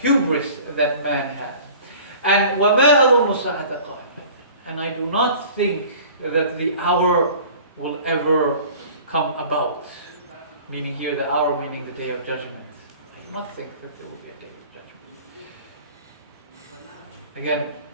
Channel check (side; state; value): both; inverted; correlation -0.45